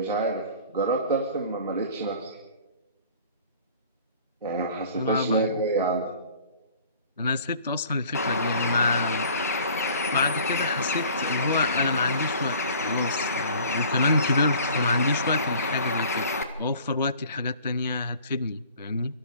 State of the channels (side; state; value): both; inverted; correlation -0.49